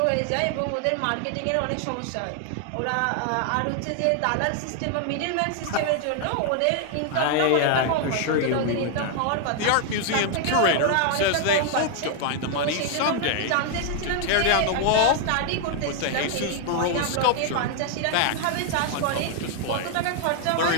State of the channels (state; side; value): different; both; correlation 0.00